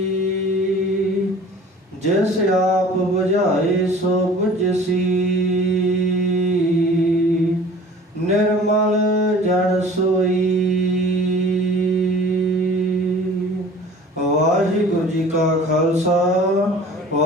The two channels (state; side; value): normal; both; correlation 0.46